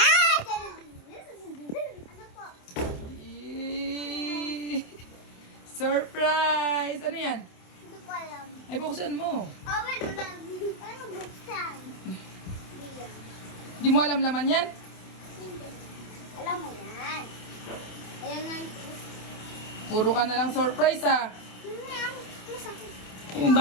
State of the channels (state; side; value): late; right; 27 ms